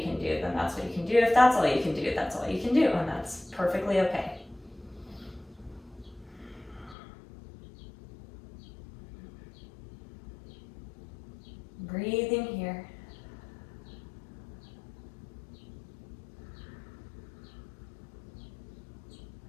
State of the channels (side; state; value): right; drops out; at 7.0 s